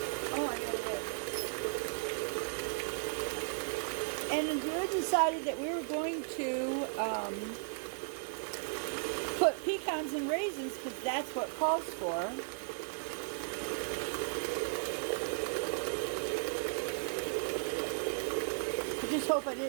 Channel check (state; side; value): silent; left; digital silence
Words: Oh, I got it. And we decided that we were going to put pecans and raisins because that's what calls for. I just hope I